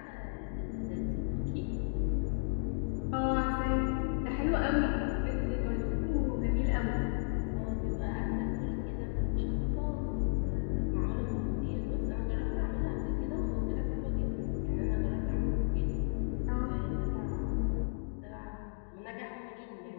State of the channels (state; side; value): silent; right; digital silence